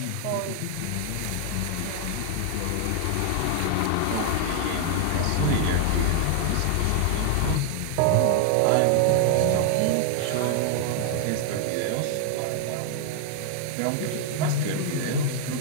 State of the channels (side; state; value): both; different; correlation 0.00